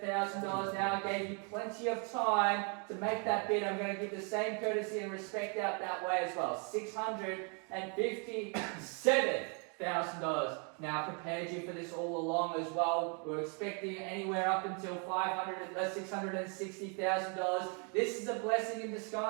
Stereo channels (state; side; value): quieter; left; 37.9 dB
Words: now. I gave you plenty of time to make that bid. I'm going to give the same courtesy and respect out that way as well. $657,000. Now prepared you for this all along as well. We're expecting anywhere up until $660,000. This is a blessing in